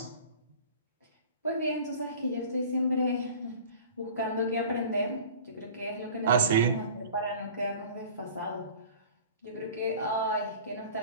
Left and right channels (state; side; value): inverted; both; correlation -0.42